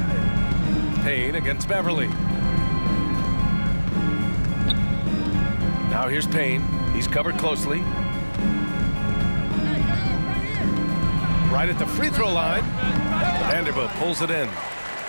Payne against Beverly. Now here's Payne. He's covered closely. Right at the free throw line. Vanderbilt pulls it in.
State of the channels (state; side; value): inverted; both; correlation -1.00